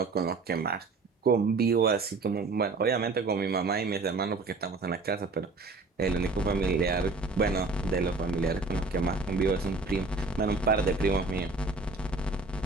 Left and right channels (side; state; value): left; quieter; 3.8 dB